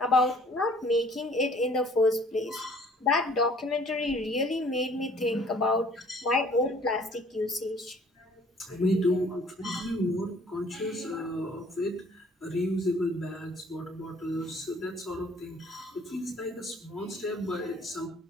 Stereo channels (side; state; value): both; normal; correlation 0.56